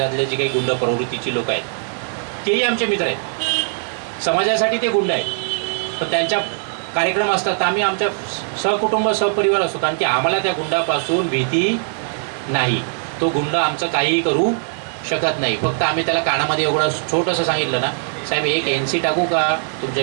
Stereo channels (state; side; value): silent; left; digital silence